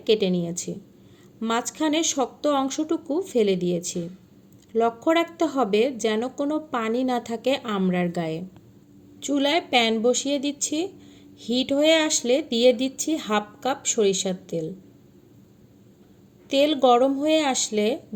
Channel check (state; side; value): identical; both; correlation 1.00